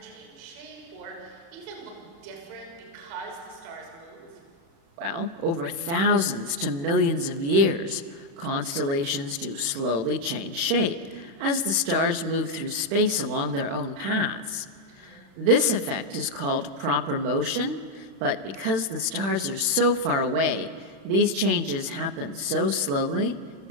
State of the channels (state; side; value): late; left; 36 ms